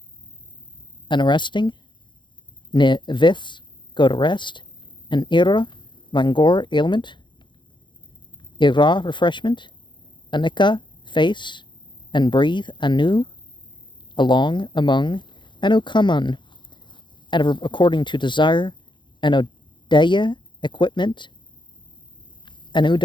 an arresting. Neviths, go to rest. An ira, langor, ailment. Ira, refreshment. Anika, face. And breathe, anu, along, among. Anukaman, adverb according to desire. Anodeya, equipment.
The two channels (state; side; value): late; right; 0.23 ms